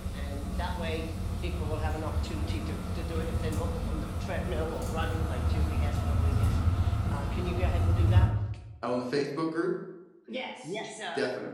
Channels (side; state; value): both; identical; correlation 1.00